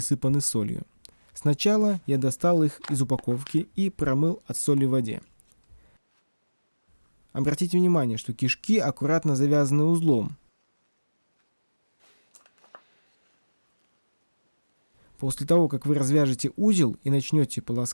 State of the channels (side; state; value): both; inverted; correlation -1.00